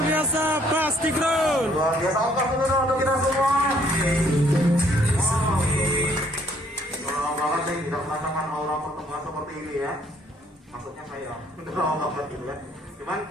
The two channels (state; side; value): normal; both; correlation 0.64